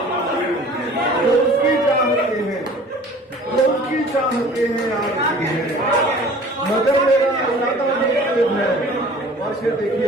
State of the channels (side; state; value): both; normal; correlation 0.47